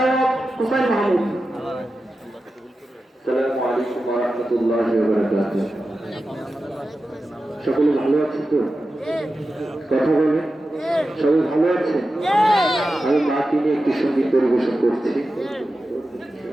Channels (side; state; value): both; normal; correlation 0.92